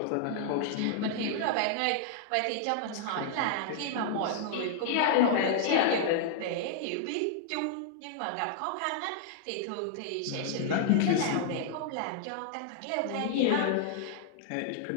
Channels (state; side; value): different; both; correlation -0.01